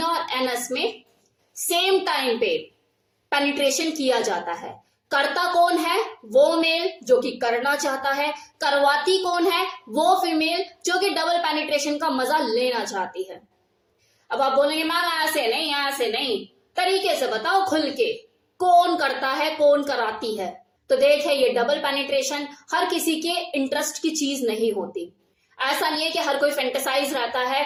और एनस में सेम टाइम पे पेनिट्रेशन किया जाता है। करता कौन है? वो मेल जो कि करना चाहता है। करवाती कौन है? वो फीमेल जो कि डबल पेनिट्रेशन का मजा लेना चाहती है। अब आप बोलेंगे मैम ऐसे नहीं, ऐसे नहीं, तरीके से बताओ खुल के, कौन करता है, कौन कराती है। तो देखे, ये डबल पेनिट्रेशन हर किसी के इंटरेस्ट की चीज नहीं होती। ऐसा नहीं है कि हर कोई फैंटेसाइज रहता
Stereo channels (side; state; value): both; identical; correlation 1.00